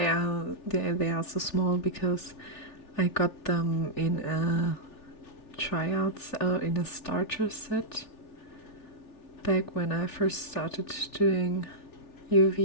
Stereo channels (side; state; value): right; late; 3.4 ms